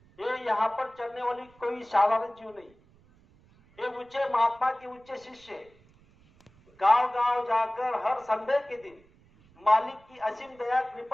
ये यहाँ पर चलने वाली कोई साधारण जीव नहीं, ये ऊंचे महात्मा के ऊंचे शिष्य गांव गांव जाकर हर संडे के दिन मालिक की असीम दया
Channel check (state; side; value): noise; right; rumble, 29 dB below the sound